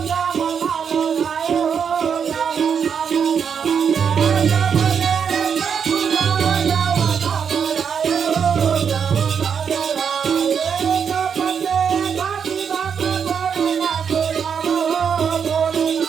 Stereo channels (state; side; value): quieter; left; 7.0 dB